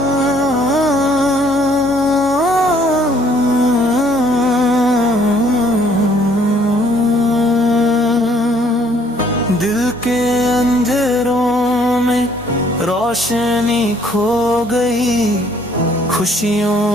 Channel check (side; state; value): both; normal; correlation 0.62